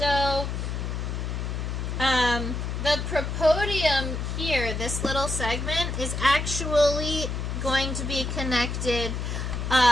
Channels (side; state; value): left; noise; hum, 3 dB below the sound